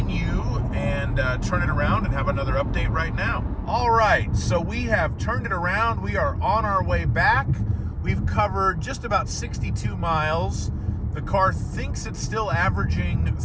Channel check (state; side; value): identical; both; correlation 1.00